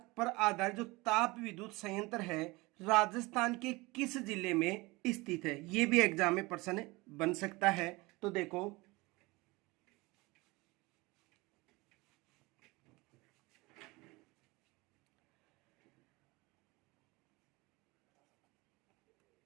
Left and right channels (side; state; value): left; quieter; 23.2 dB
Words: पर आधारित जो ताप विद्युत संयंत्र है राजस्थान के किस जिले में स्थित है। ये भी एग्जाम में प्रश्न बन सकता है। तो देखो